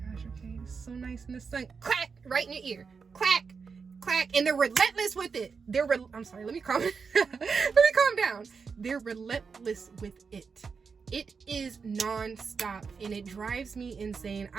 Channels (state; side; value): quieter; left; 5.4 dB